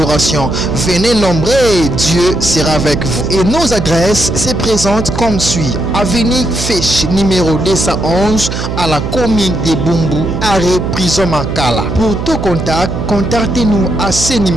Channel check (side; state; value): right; noise; hum, 5 dB below the sound